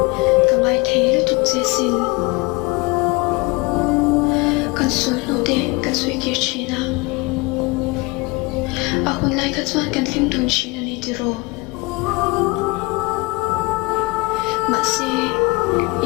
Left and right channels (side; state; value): right; quieter; 25.4 dB